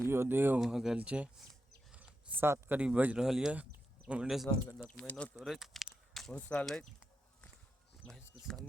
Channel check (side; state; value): both; normal; correlation 0.87